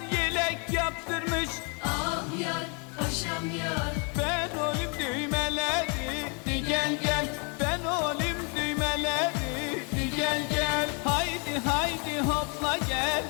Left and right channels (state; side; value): quieter; right; 35.2 dB